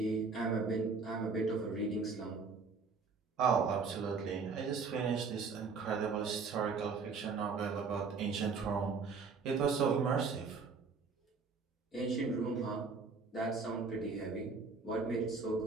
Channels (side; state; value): left; quieter; 4.8 dB